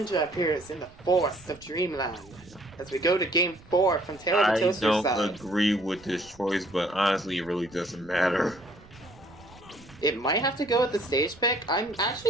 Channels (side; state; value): right; noise; rumble, 23 dB below the sound